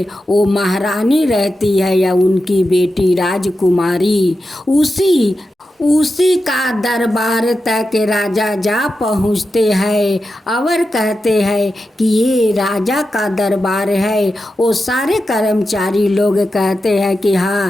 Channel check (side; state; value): both; normal; correlation 0.90